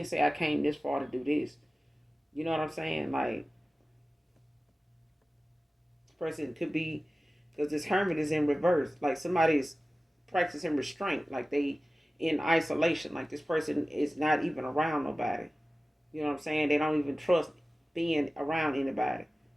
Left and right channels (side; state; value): both; normal; correlation 0.96